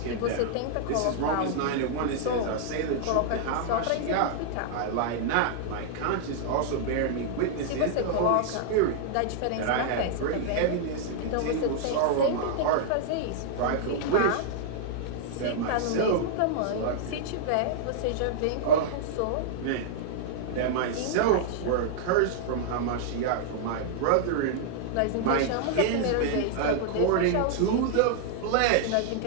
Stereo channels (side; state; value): both; different; correlation -0.01